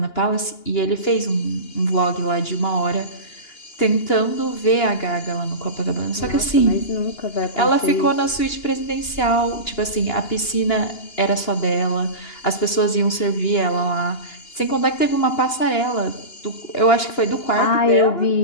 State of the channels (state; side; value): late; right; 2.9 ms